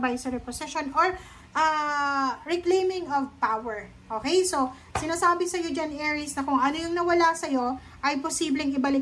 position or reclaiming of power. Okay? So, sinasabi sa iyo dyan, Aries, na kung ano yung nawala sa iyo ay posibleng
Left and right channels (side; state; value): both; identical; correlation 1.00